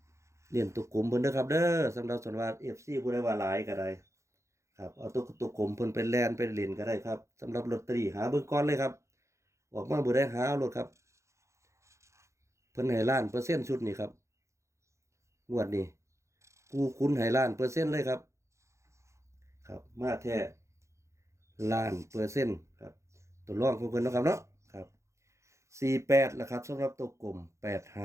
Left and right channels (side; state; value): left; late; 0.14 ms